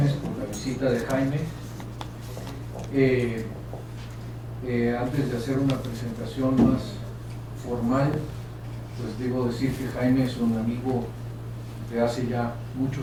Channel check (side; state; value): both; identical; correlation 1.00